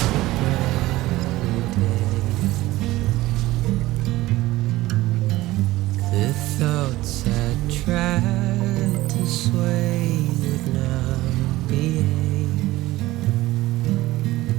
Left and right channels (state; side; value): quieter; left; 17.6 dB